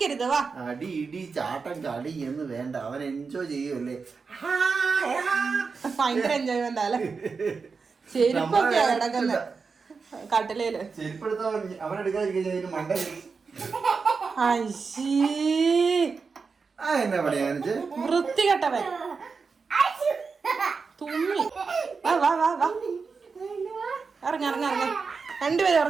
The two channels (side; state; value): left; quieter; 4.9 dB